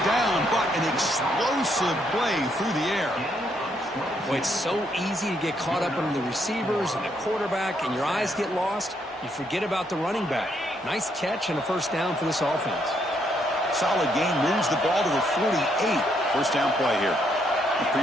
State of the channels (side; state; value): both; normal; correlation 0.74